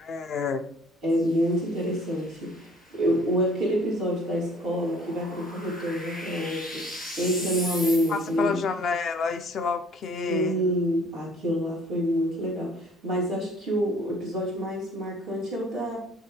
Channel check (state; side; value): normal; both; correlation 0.54